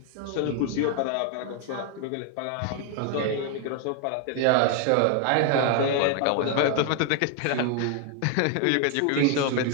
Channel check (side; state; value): both; different; correlation 0.00